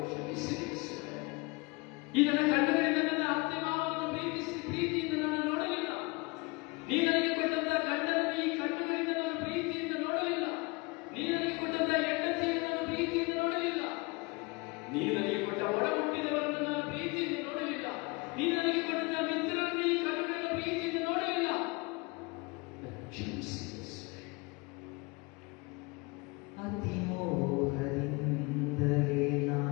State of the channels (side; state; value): right; quieter; 26.9 dB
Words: ಕ್ಷಮಿಸಿ. ಈ ನನ್ನ ಕಣ್ಣುಗಳಿಂದ ನನ್ನ ಅತ್ತೆ ಮಾವನನ್ನು ಪ್ರೀತಿಯಿಂದ ನಾನು ನೋಡಲಿಲ್ಲ. ನೀ ನನಗೆ ಕೊಟ್ಟಂತಹ ಗಂಡನನ್ನು ಈ ಕಣ್ಣುಗಳಿಂದ ನಾನು ಪ್ರೀತಿಯಿಂದ ನೋಡಲಿಲ್ಲ. ನೀ ನನಗೆ ಕೊಟ್ಟಂತಹ ಹೆಂಡತಿಯನ್ನು ನಾನು ಪ್ರೀತಿಯಿಂದ ನೋಡಲಿಲ್ಲ. ನೀ ನನಗೆ ಕೊಟ್ಟ ಒಡ ಹುಟ್ಟಿದವರನ್ನು ನಾನು ಪ್ರೀತಿಯಿಂದ ನೋಡಲಿಲ್ಲ. ನೀ ನನಗೆ ಕೊಟ್ಟಂತಹ ಮಿತ್ರರನ್ನು ಈ ಕಣ್ಣುಗಳಿಂದ ಪ್ರೀತಿಯಿಂದ ನೋಡಲಿಲ್ಲ. ಕ್ಷಮಿಸಿ. ಅತಿಮೋಹದಿಂದಲೇ